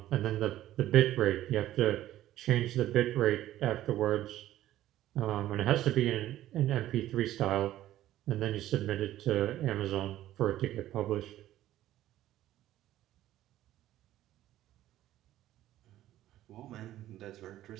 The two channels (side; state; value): left; quieter; 13.8 dB